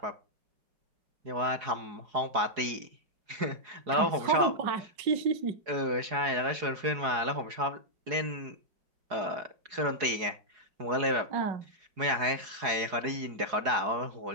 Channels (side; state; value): left; late; 4.8 ms